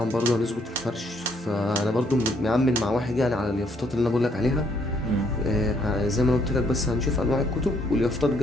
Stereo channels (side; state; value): both; normal; correlation 0.69